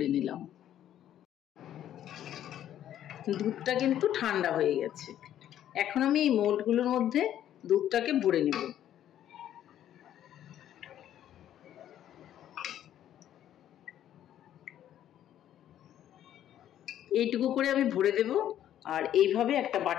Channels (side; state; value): right; quieter; 11.3 dB